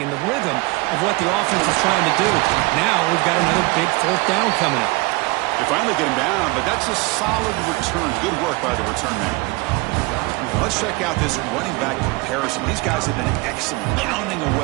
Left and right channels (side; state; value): left; quieter; 24.2 dB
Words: and the rhythm of what the offense is trying to do. Now we've got another big fourth down coming up. They finally get him down, but that's a solid return. Good work by the return man. Let's check out this running back comparison. These guys have been excellent, pounding